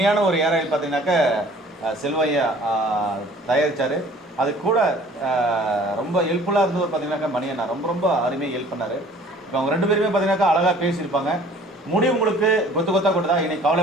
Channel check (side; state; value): both; normal; correlation 0.52